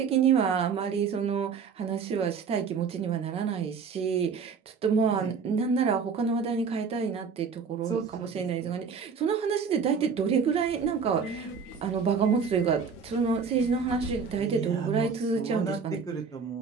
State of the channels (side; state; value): left; quieter; 5.8 dB